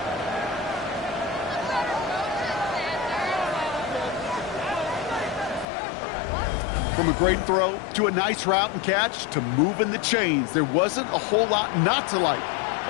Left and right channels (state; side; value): drops out; right; at 5.7 s